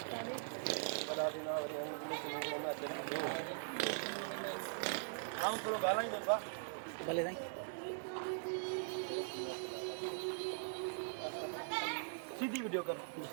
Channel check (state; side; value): silent; left; digital silence